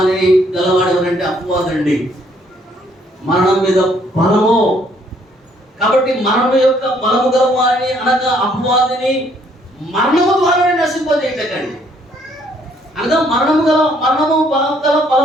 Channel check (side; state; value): both; normal; correlation 0.66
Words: ఎవరంటే అపవాదండి. మరణం మీద బలము. కాబట్టి మరణం యొక్క బలము గలవారిని అనగా అపవాదిని మరణము ద్వారా నశింపజేయటండి. అనగా బలము